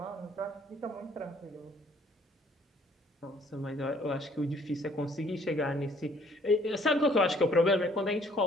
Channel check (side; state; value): both; normal; correlation 0.61